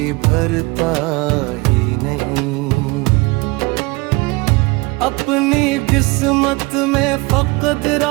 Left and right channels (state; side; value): quieter; left; 24.7 dB